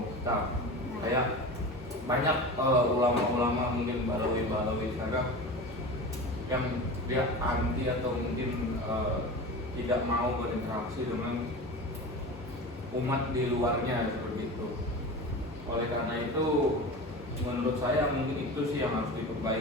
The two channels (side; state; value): both; normal; correlation 0.31